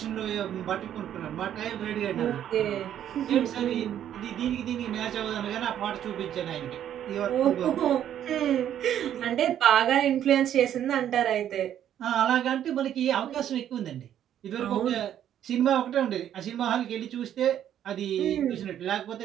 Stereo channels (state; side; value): quieter; left; 10.5 dB